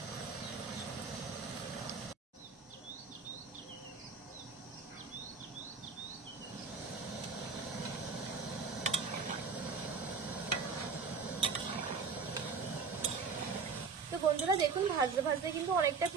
তো বন্ধুরা দেখুন ভাজতে ভাজতে কিন্তু অনেকটা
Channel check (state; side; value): quieter; left; 5.2 dB